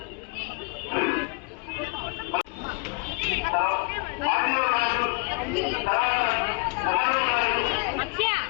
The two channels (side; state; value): right; quieter; 31.8 dB